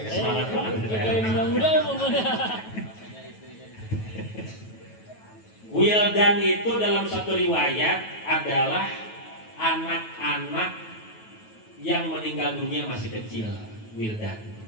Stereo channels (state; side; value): late; right; 9.2 ms